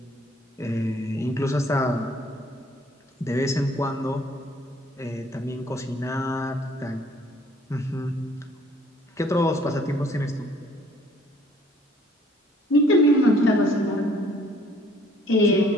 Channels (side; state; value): both; normal; correlation 0.59